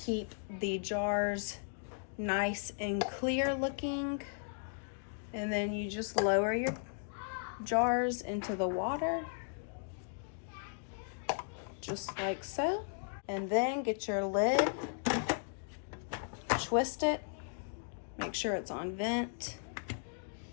the jars nice and clear looking. And then you just lower your jars into the water, just like so. And then get your lid, twist it, make sure it's on vent,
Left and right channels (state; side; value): silent; right; digital silence